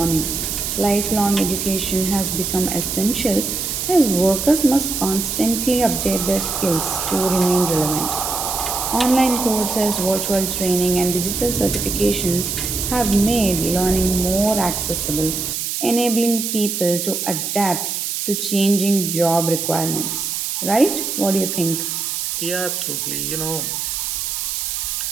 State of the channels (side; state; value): right; noise; hiss, 2 dB below the sound